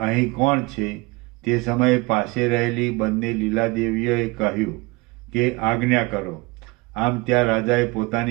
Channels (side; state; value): left; quieter; 24.5 dB